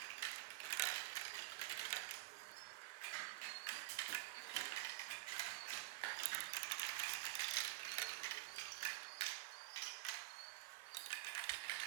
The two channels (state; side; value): quieter; left; 20.0 dB